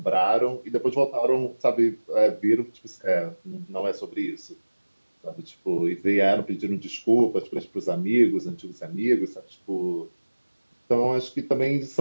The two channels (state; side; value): inverted; both; correlation -1.00